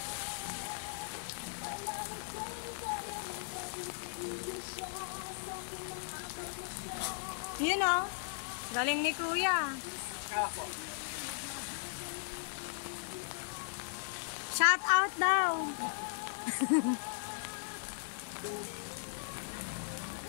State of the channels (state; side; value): silent; right; 53 dB below the other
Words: Yun o. Galing ni Kuya. Ako. Shout out daw.